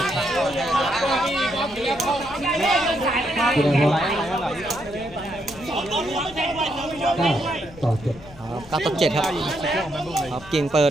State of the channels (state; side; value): noise; left; rumble, 20 dB below the sound